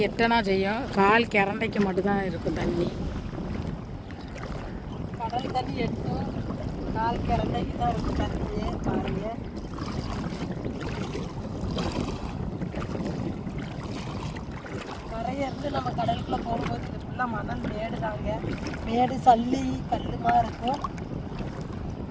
எட்டனா செய்யும். கால் கிரண்டைக்கு மட்டும்தான் இருக்கும் தண்ணி. கடல் தண்ணி எட்டும், கால் கிரண்டைக்கு தான் இருக்கும் தண்ணியே. பாருங்க, கரையிருந்து நம்ம கடலுக்குள்ளே போகும்போது இது ஃபுல்லாக மணல் மேடு தாங்க. மேடு சல்லி கல்லுமா இருக்கும்.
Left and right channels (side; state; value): both; identical; correlation 1.00